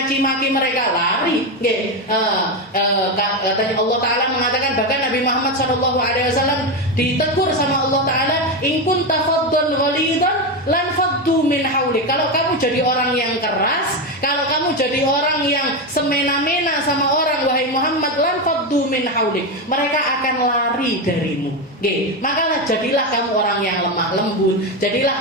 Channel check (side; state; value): both; normal; correlation 0.12